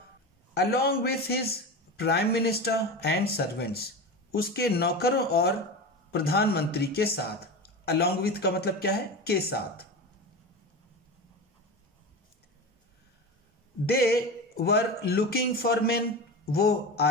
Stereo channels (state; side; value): normal; both; correlation 0.26